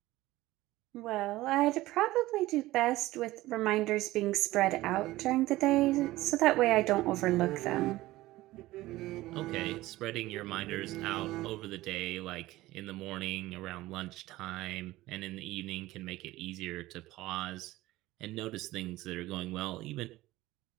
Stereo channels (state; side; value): quieter; left; 17.5 dB